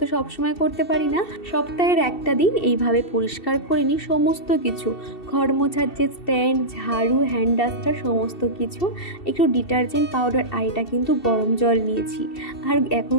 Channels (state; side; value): late; right; 2.7 ms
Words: তো সবসময় করতে পারি না, সপ্তাহের একটা দিন এইভাবে পরিষ্কার করে নিই সমস্ত কিছু, ঘর মোছার যে স্ট্যান্ড, ঝাড়ু, হ্যান্ড ডাস্টার সমস্ত কিছু। একটু ডিটারজেন্ট পাউডার, আর এটা কিন্তু গরম জল নিয়েছি। আর এখন